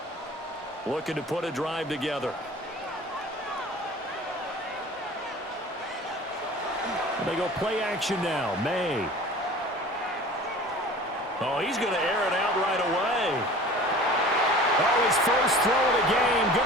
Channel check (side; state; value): both; normal; correlation 0.42